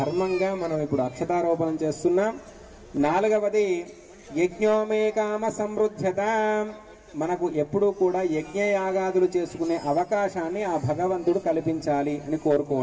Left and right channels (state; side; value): identical; both; correlation 1.00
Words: మనం ఇప్పుడు అక్షతారోపణం చేస్తున్నాం. 4వది యజ్ఞోమే కామ సమృద్ధ్యత, మనకు ఎప్పుడూ కూడా యజ్ఞయాగాదులు చేసుకునే అవకాశాన్ని ఆ భగవంతుడు కల్పించాలి అని